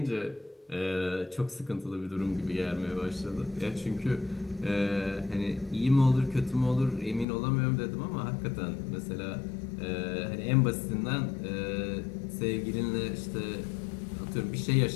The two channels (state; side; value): drops out; right; at 7.2 s